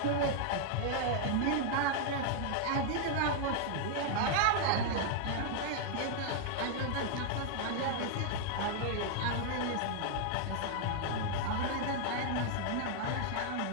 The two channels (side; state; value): both; different; correlation 0.00